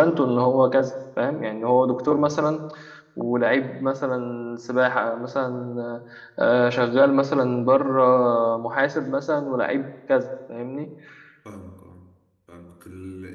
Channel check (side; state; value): both; identical; correlation 1.00